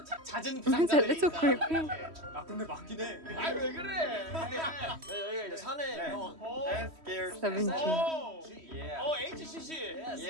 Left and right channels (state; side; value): late; left; 3.1 ms